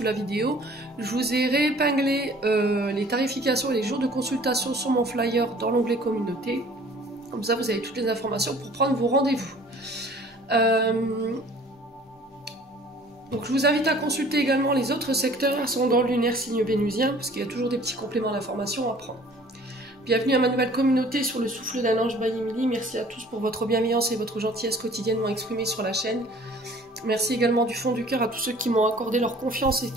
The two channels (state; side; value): normal; both; correlation 0.51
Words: la vidéo. Je vous ai réépinglé les tarifications et les jours de consultation sur mon flyer dans l'onglet communauté. Comme ça, vous avez toutes les informations pour prendre vos rendez-vous. Donc, je vous invite à consulter également les autres secteurs ascendant lunaire signe vénusien, parce qu'il y a toujours des petits compléments d'informations à prendre. Bienvenue à ma nouvelle communauté sur le souffle d'un ange by Emily. Merci à tous pour votre bienveillance et votre gentillesse quotidiennement exprimée sur la chaîne. Merci également du fond du cœur à tous ceux qui m'ont accordé leur confiance et